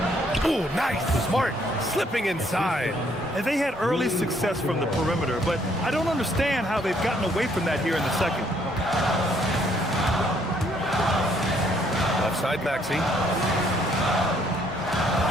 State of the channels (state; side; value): normal; both; correlation 0.67